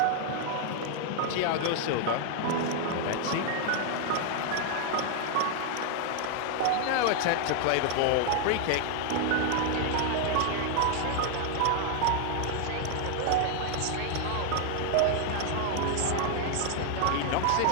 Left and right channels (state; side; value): different; both; correlation 0.00